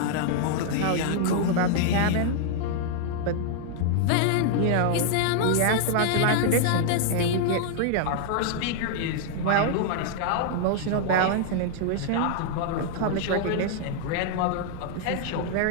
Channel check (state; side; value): different; both; correlation 0.00